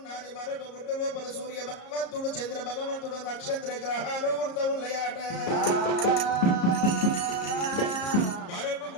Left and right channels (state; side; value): late; right; 34 ms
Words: మరొక గుడ్డు లోపల సూర్య భగవంతుడు చంద్ర భగవంతుడు నక్షత్ర గ్రహాలు వృత ఉన్నాయట మరొక